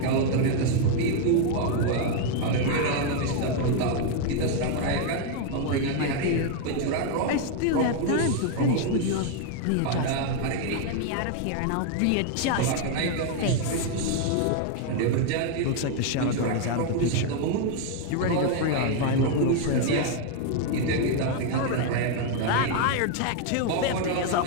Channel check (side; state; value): both; different; correlation 0.01